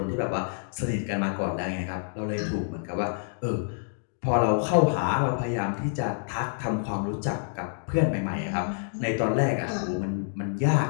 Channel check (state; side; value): silent; right; digital silence